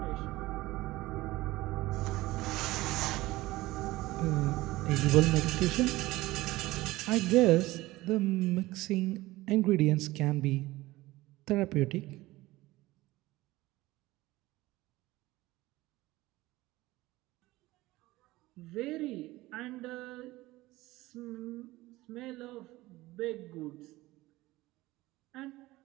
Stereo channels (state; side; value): quieter; left; 18.6 dB